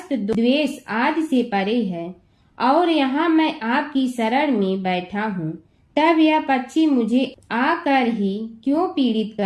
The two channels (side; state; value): both; identical; correlation 1.00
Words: द्वेष आदि से परे है और यहाँ मैं आपकी शरण में बैठा हूँ। तब यह पक्षी मुझे आकर ही क्यों पीड़ित